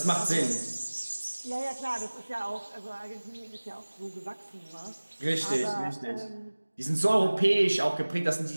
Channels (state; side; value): inverted; both; correlation -1.00